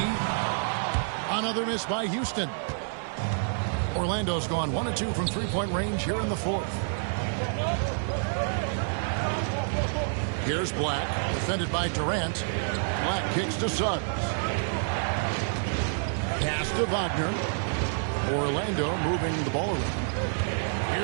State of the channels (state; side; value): silent; left; 57 dB below the other